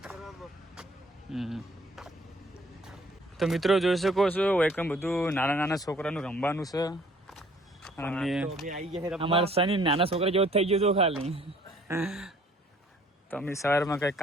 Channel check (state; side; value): normal; both; correlation 0.58